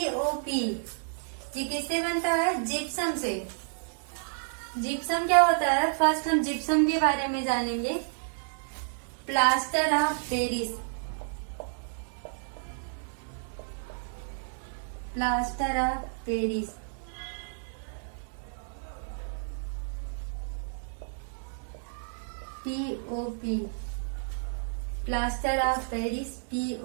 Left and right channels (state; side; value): silent; left; digital silence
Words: ये किससे बनता है? जिप्सम से। जिप्सम क्या होता है? फर्स्ट हम जिप्सम के बारे में जानेंगे। Plaster of Paris, POP, plaster of Paris,